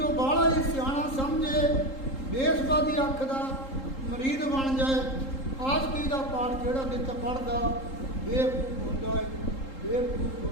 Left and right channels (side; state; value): right; late; 3.8 ms